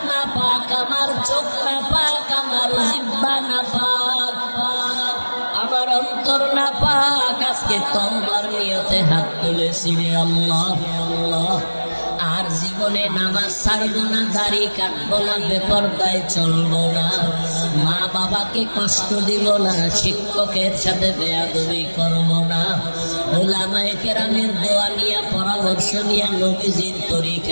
না পাক আমার চোখ না পাক আমার জিহ্বা না পাক আমার অন্তর না পাক আজকে তওবার নিয়তে হাত তুলেছি রে আল্লাহ আল্লাহ আর জীবনে নামাজ ছাড়বো না দাড়ি কাটবো না বেপরদায় চলবো না মা বাবাকে কষ্ট দিব না শিক্ষকের সাথে বেয়াদবি করবো না উলামায়ে কেরামের দোয়া নিয়ে পরামর্শ নিয়ে নবীজির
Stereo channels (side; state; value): both; inverted; correlation -1.00